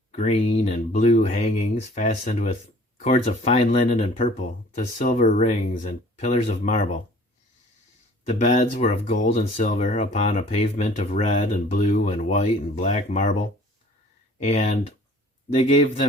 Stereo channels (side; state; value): both; normal; correlation 0.51